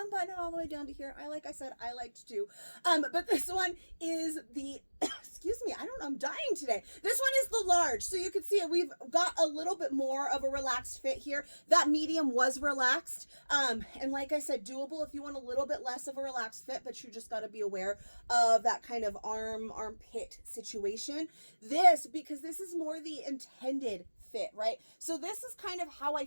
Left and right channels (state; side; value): inverted; both; correlation -1.00